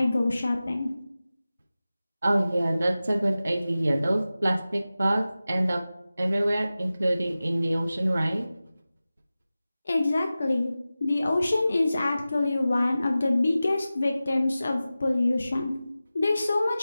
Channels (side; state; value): both; inverted; correlation -0.95